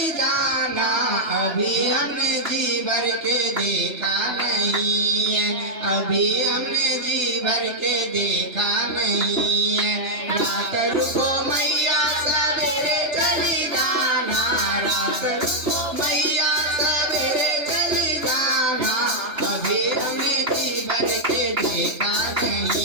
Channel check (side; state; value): left; late; 3.3 ms